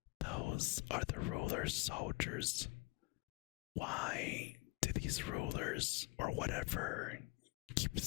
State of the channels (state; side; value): quieter; right; 24.0 dB